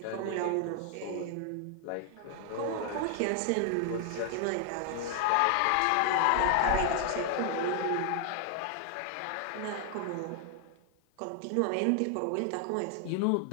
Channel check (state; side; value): different; both; correlation 0.00